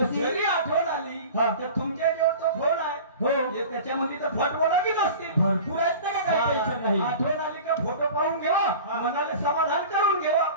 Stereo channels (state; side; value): inverted; both; correlation -0.38